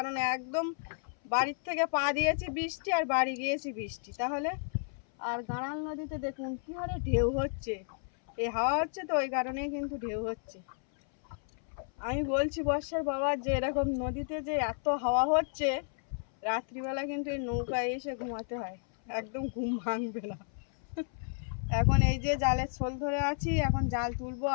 একদম বাড়ির থেকে পা দিয়েছি বৃষ্টি আর বাড়ি গিয়েছি বৃষ্টি। তাহলে আর গাড়াল নদীতে দেখুন কী হারে ঢেউ হচ্ছে, এই হাওয়া হচ্ছে তো ওই কারণেই কিন্তু ঢেউ হচ্ছে। আমি বলছি বর্ষার বাবা যে এরকম নদীতে যে এত হাওয়া হচ্ছে, রাত্রিবেলা কিন্তু এই নৌকায় এসে ঘুমাতে হয়, একদম ঘুম ভাঙবে না। এখন এই যে জালের ছোল ধরে আছি, এখন জাল তুলবো।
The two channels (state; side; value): silent; right; 56 dB below the other